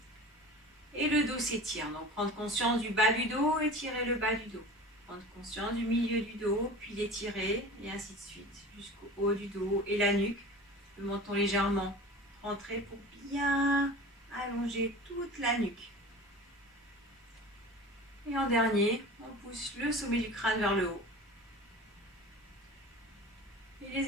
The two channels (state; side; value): normal; both; correlation 0.37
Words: Et le dos s'étire. Donc prendre conscience du bas du dos, étirer le bas du dos. Prendre conscience du milieu du dos, puis l'étirer, et ainsi de suite, jusqu'au haut du dos et la nuque. Le menton légèrement rentré pour bien allonger toute la nuque. Et en dernier, on pousse le sommet du crâne vers le haut. Et